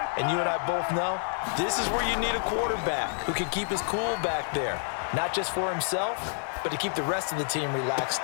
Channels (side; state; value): right; silent; 59 dB below the other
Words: And you and I both know this is where you need a quarterback who can keep his cool back there. Not just for himself, but to keep the rest of the team relaxed